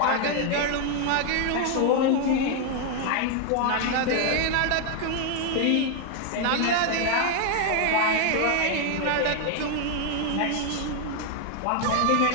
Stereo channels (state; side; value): different; both; correlation 0.00